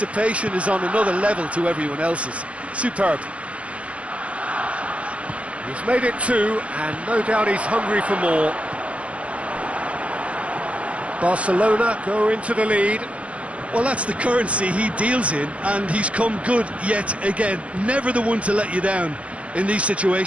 is on another level to everyone else's. Superb. He's made it two, and no doubt he's hungry for more. Barcelona go into the lead. Well, that's the currency he deals in, and he's come good yet again. Never the one to let you down in these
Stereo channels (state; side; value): late; left; 0.063 ms